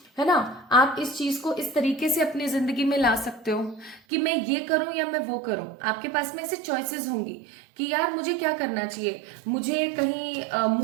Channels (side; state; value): left; drops out; at 4.0 s